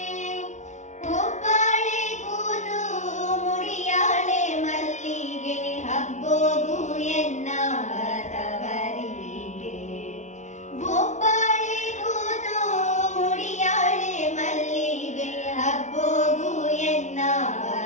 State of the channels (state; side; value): late; right; 0.35 ms